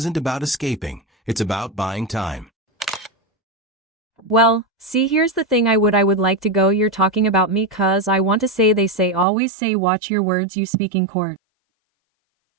about escaping, it's about buying time. Well, see, here's the thing, I would like to go, you're talking about me cause I want to say they say always say watch your words you speak in court.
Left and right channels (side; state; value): left; drops out; at 9.2 s